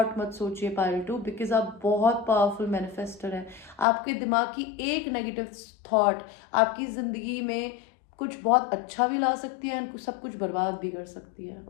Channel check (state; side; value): drops out; right; at 3.9 s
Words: मत सोचिए पाइल 2, बिकॉज आप बहुत पावरफुल मैनिफेस्टर हैं. आपके दिमाग की एक नेगेटिव थॉट आपकी ज़िंदगी में कुछ बहुत अच्छा भी ला सकती है और सब कुछ बर्बाद भी कर सकती है.